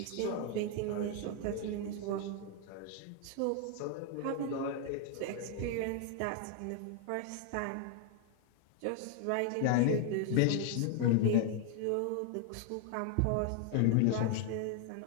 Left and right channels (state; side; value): different; both; correlation 0.00